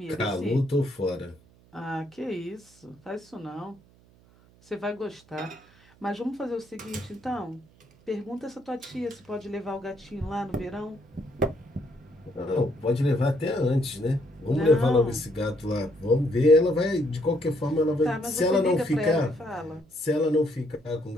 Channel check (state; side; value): noise; right; hum, 28 dB below the sound